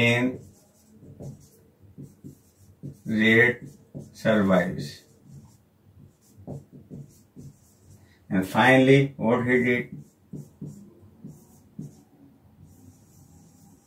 rat survives. And finally, what he did?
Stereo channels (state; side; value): identical; both; correlation 1.00